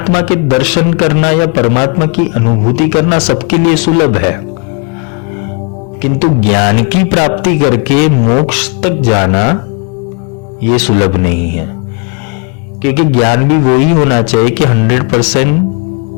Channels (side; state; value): right; quieter; 34.9 dB